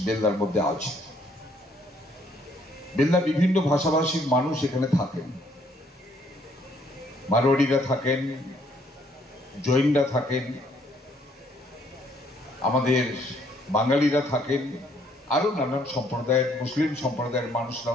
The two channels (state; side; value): normal; both; correlation 0.66